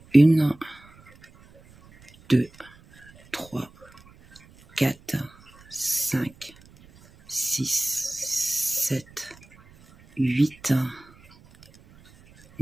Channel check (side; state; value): right; noise; rumble, 26 dB below the sound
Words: 1, 2, 3, 4, 5, 6, 7, 8,